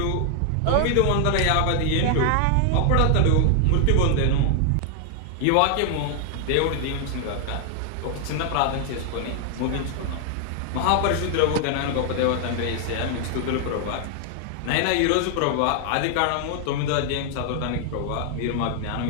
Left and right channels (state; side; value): different; both; correlation 0.00